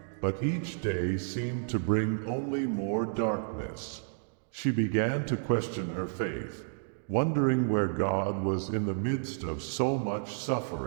but each day seemed to bring only more darkness. She began to question her faith, wondering where God was in the midst of so much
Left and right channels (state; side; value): silent; left; digital silence